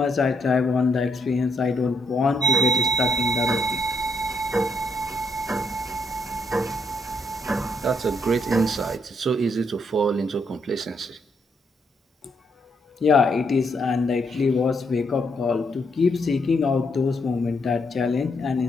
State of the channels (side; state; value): both; normal; correlation 0.75